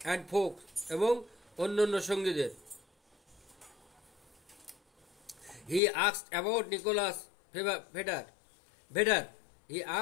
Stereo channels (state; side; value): drops out; right; at 5.8 s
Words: অ্যান্ড ফোকস, এবং অন্যান্য সঙ্গীদের। He asked about Nicholas Vedder. He